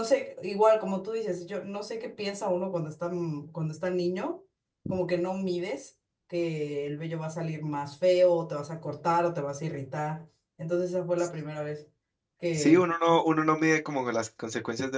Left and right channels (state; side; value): identical; both; correlation 1.00